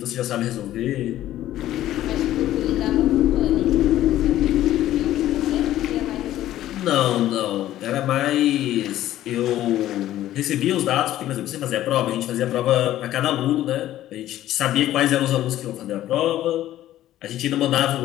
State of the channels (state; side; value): quieter; right; 13.5 dB